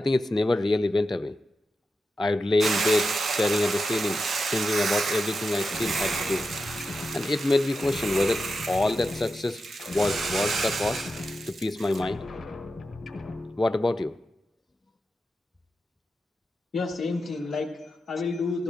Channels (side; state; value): both; normal; correlation 0.90